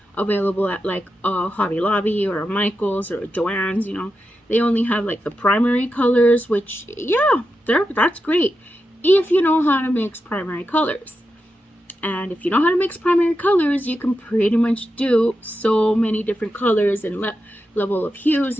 available at like a Hobby Lobby or a Michael's or a Joann's, you know. They only have like the primary colors, which, yeah, that's great if you know how to mix primary colors. And if you know how to mix primary colors, you can pretty much do so many different colors and level of hues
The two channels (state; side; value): normal; both; correlation 0.89